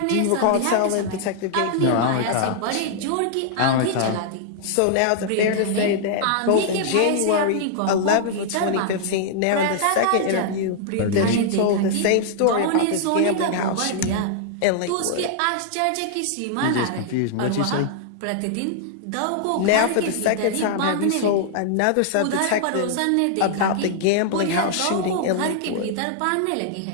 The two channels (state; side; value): different; both; correlation -0.01